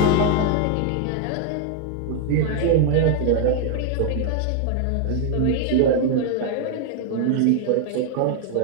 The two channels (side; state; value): both; different; correlation 0.00